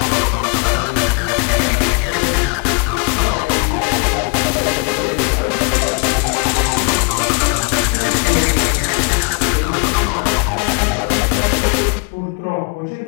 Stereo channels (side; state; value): right; quieter; 34.7 dB